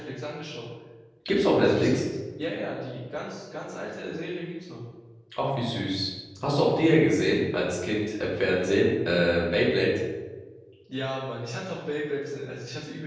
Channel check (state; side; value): identical; both; correlation 1.00